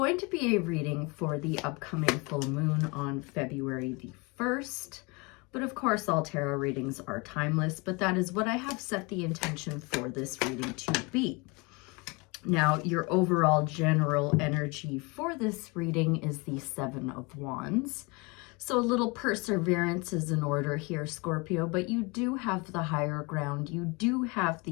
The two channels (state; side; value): quieter; right; 28.1 dB